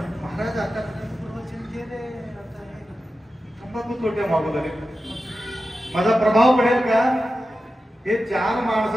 महाराज आता तंबाखू तोट्या मागू लागले, माझा प्रभाव पडेल का? हे चार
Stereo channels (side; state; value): both; normal; correlation 0.92